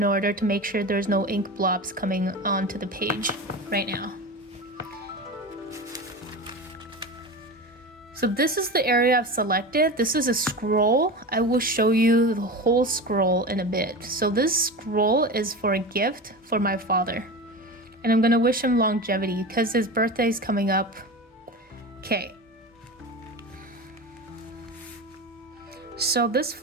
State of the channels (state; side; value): normal; both; correlation 0.27